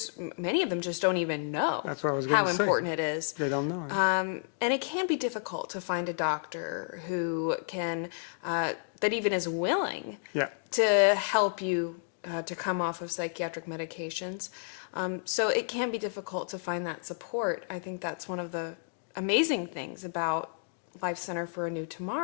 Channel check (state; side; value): silent; right; digital silence